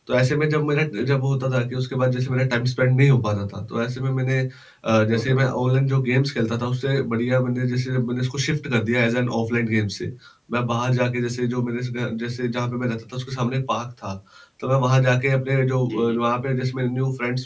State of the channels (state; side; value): identical; both; correlation 1.00